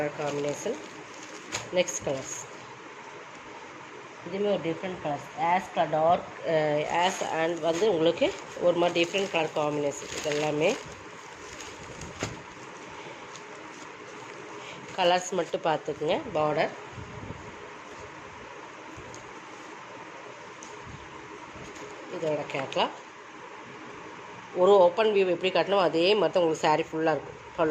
காம்பினேஷன். நெக்ஸ்ட் கலர்ஸ் இதுவுமே ஒரு டிஃப்ரெண்ட் கலர்ஸ். டார்க் அண்ட் வந்து உங்களுக்கு ஒரு மாதிரி டிஃப்ரெண்ட் கலர் காம்பினேஷன். இது எல்லாமே கலர்ஸ் மட்டும் பார்த்துக்குங்க. பார்டர் இதோட கேட்லாக். ஒரு ஓப்பன் வியூ எப்படி காட்டணும் அதே மாதிரி தான் உங்களுக்கு சாரீ ஃபுல்லாக இருக்கும்.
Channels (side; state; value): both; identical; correlation 1.00